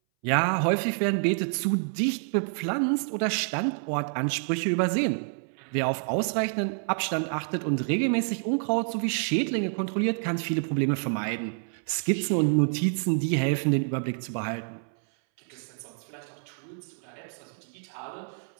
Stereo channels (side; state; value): left; silent; 59 dB below the other